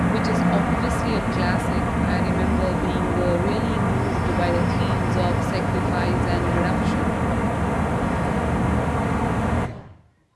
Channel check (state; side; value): identical; both; correlation 1.00